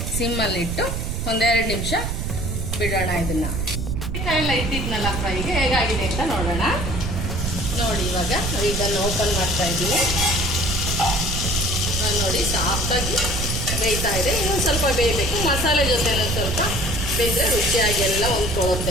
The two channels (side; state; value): right; noise; rumble, 2 dB below the sound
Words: ಸಿಮ್ಮಲ್ಲಿಟ್ಟು 1-2 ನಿಮಿಷ ಬಿಡೋಣ. ಇದನ್ನ ಎಲ್ಲ ಇಟ್ಟಿದ್ನಲ್ಲ ಫ್ರೈಗೆ ಹೇಗಾಗಿದೆ ಅಂತ ನೋಡೋಣ. ನೋಡಿ, ಇವಾಗ ಇದನ್ನು ಓಪನ್ ಮಾಡ್ತಾ ಇದ್ದೀನಿ. ನೋಡಿ, ಸಾಫ್ಟಾಗಿ ಬೇಯ್ತಾ ಇದೆ. ಇನ್ನೊಂದು ಸ್ವಲ್ಪ ಬೇಯಬೇಕು. ಮಸಾಲೆ ಜೊತೆ ಸ್ವಲ್ಪ ಬೇಯಿದ್ರೆ ರುಚಿಯಾಗಿ ಎಲ್ಲ